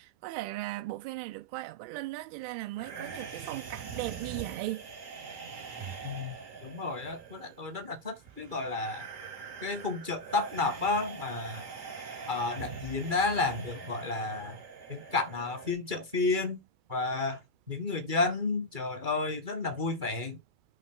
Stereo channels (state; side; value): late; left; 2.3 ms